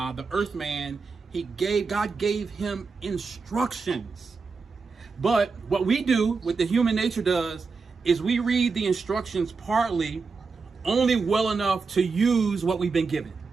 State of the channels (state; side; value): quieter; left; 4.7 dB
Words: earth man, God gave him instructions. But what we do, what the human nature does, is we read the instructions partly, only well enough to use what we've been given.